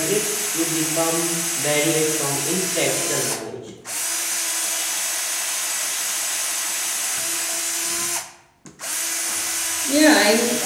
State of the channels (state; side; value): identical; both; correlation 1.00